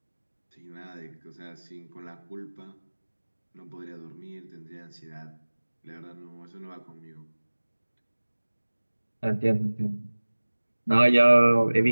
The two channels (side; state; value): both; inverted; correlation -1.00